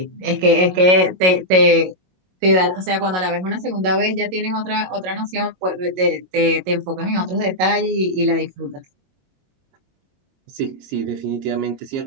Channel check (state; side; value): late; left; 22 ms